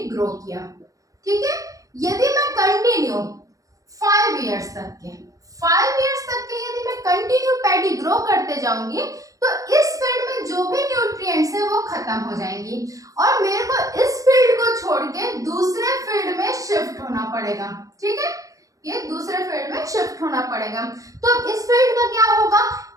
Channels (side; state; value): left; late; 0.16 ms